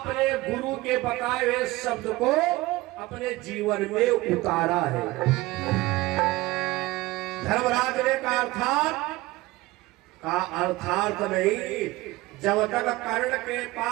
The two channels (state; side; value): quieter; left; 19.6 dB